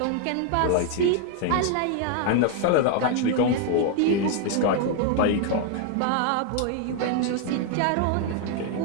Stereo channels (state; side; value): different; both; correlation 0.00